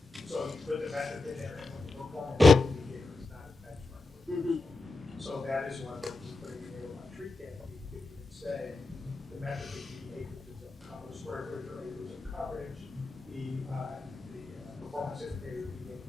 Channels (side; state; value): right; quieter; 3.4 dB